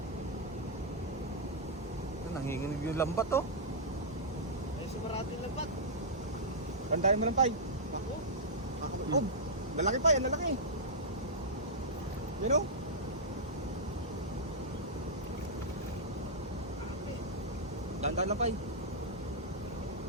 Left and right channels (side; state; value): both; normal; correlation -0.09